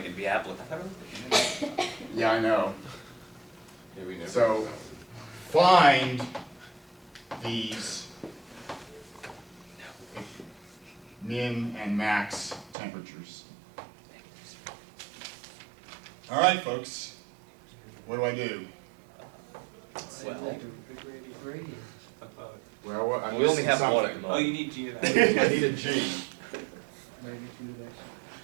it'd be applicable. Yeah, I know. Yeah, we never. So find these min and max temperatures. All right, folks, what do I do? Well, I'm We only missing have one at something. the Oh, you moment. need g of I x. need a G.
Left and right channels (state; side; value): drops out; left; at 12.8 s